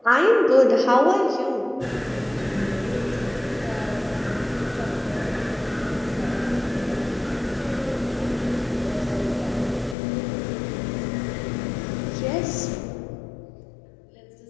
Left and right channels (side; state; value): right; drops out; at 10.0 s